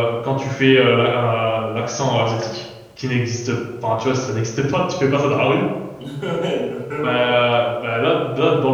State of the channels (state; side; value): identical; both; correlation 1.00